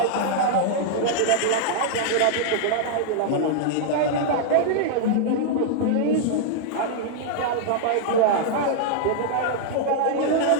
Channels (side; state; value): both; different; correlation -0.01